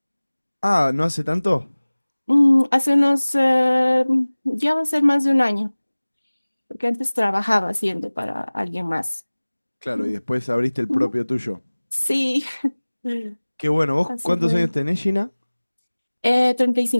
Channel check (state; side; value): inverted; both; correlation -1.00